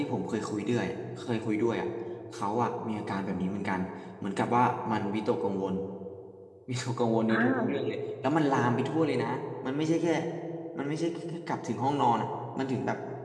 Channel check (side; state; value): both; identical; correlation 1.00